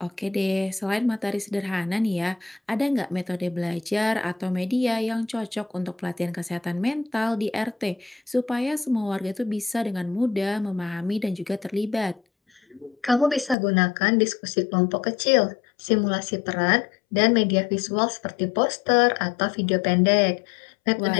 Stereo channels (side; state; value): right; drops out; at 13.6 s